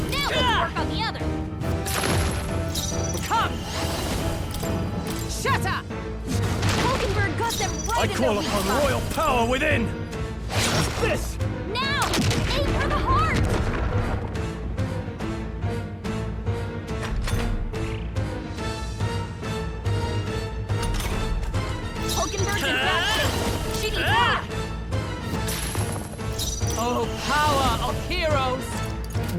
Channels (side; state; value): both; identical; correlation 1.00